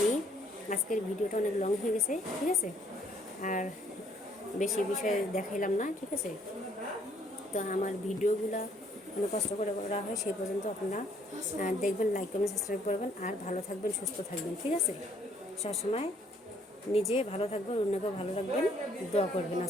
আজকের ভিডিওটা অনেক লং হয়ে গেছে, ঠিক আছে। আর বেশি বিষয় দেখাইলাম না, ঠিক আছে। তো আমার ভিডিওগুলো অনেক কষ্ট করে করা হয়, সেই পর্যন্ত আপনারা দেখবেন, লাইক কমেন্ট সাবস্ক্রাইব করবেন, আর ভালো থাকবেন, সুস্থ থাকবেন, ঠিক আছে। সবসময় নিজে ভালো থাকবেন, অন্যকেও ভালো রাখবেন, দোয়া করবেন।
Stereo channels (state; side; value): normal; both; correlation 0.65